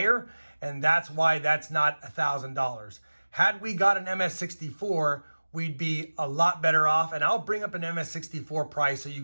and that's why that's not $1,000. Had we got an Ms-64, we'd be a lot better off, and I'll bring up an Ms-64 price so you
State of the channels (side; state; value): both; inverted; correlation -1.00